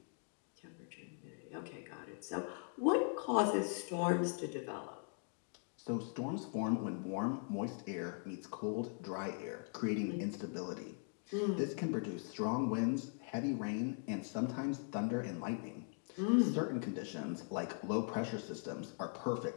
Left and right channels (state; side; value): silent; right; 51 dB below the other